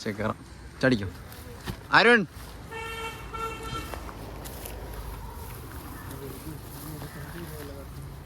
കയറാം. ചടിക്കും. അരുൺ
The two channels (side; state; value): both; identical; correlation 1.00